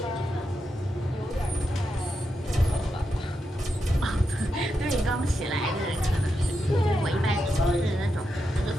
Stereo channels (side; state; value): both; normal; correlation 0.86